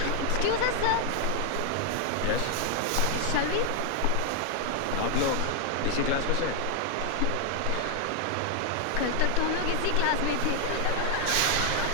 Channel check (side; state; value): both; different; correlation 0.00